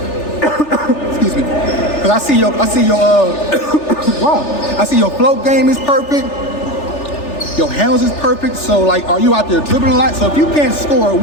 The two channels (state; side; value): late; right; 3.4 ms